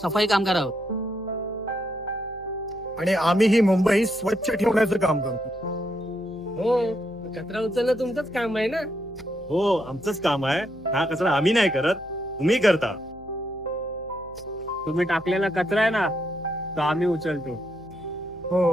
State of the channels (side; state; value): left; noise; hum, 22 dB below the sound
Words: कामगार आहोत. आणि आम्ही ही मुंबई स्वच्छ ठेवण्याचं काम करतो. हो, कचरा उचलणं तुमचंच काम आहे ना. हो, आमचंच काम आहे. हा कचरा आम्ही नाही करत, तुम्ही करता. तुम्ही टाकलेला कचरा आहे ना, तो आम्ही उचलतो.